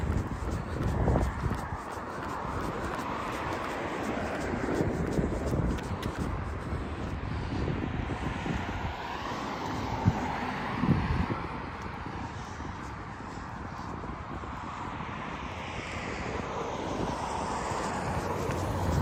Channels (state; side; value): identical; both; correlation 1.00